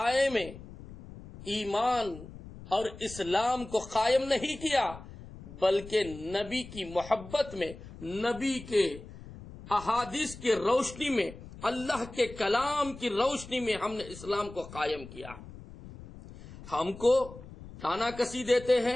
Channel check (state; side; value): noise; left; rumble, 16 dB below the sound